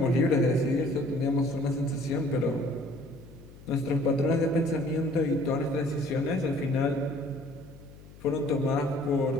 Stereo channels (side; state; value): left; noise; hum, 20 dB below the sound